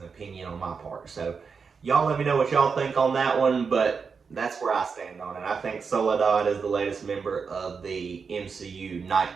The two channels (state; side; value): quieter; left; 5.5 dB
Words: an opinion on my part. So y'all let me know what y'all think on that one, but that's where I stand on it. I think Soledad is the latest member of the MCU Night